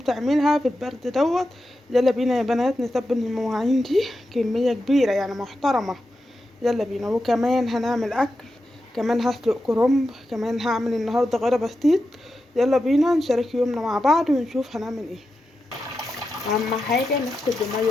في البرد دوت. يلا بينا يا بنات نتبل المواعين دي كمية كبيرة يعني محترمة. يلا بينا. وكمان هنعمل اكل، كمان هسلق كرنب، كمان هعمل النهاردة غدا بسيط. يلا بينا نشارك يومنا مع بعض ونشوف هنعمل ايه. اهم حاجه نغسل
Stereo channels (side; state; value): both; normal; correlation 0.89